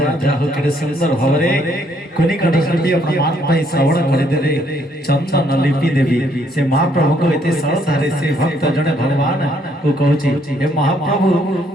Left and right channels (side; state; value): both; normal; correlation 0.69